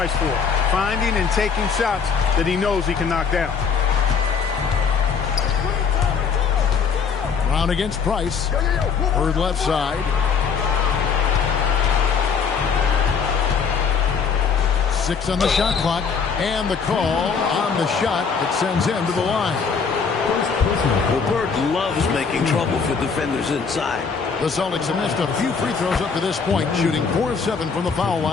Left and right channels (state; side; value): quieter; right; 5.9 dB